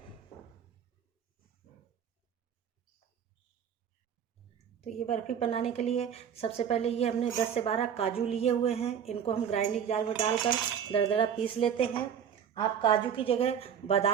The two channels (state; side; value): quieter; left; 8.2 dB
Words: तो ये बर्फ़ी बनाने के लिए सबसे पहले ये हमने 10 से 12 काजू लिए हुए हैं। इनको हम ग्राइंडिंग जार में डालकर दरदरा पीस लेते हैं। आप काजू की जगह